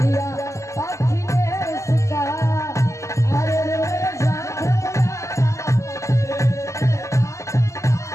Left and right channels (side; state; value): right; late; 0.15 ms